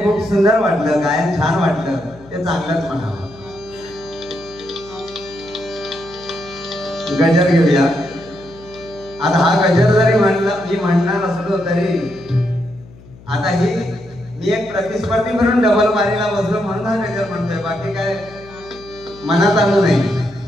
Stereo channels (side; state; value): left; noise; hum, 21 dB below the sound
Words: खूप सुंदर वाटलं, गायन छान वाटलं, ते चांगलंच म्हणावं. गजर घेऊया. आता हा गजर जरी मी म्हणणार असलो तरी आता ही मी एक प्रतिस्पर्धी म्हणून डबल बारीला बसलो म्हणून हा गजर म्हणतोय, बाकी काय मनात आलं नाही.